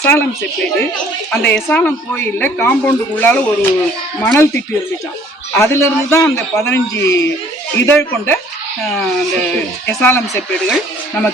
செப்பேடு. அந்த எசாலம் கோயிலில் காம்பவுண்டுக்குள்ளால ஒரு மணல் திட்டு இருந்துச்சான். அதிலிருந்து தான் அந்த 15 இதழ் கொண்ட அந்த எசாலம் செப்பேடுகள்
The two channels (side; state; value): both; normal; correlation 0.57